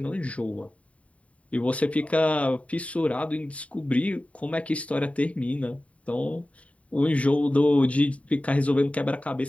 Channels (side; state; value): right; late; 0.066 ms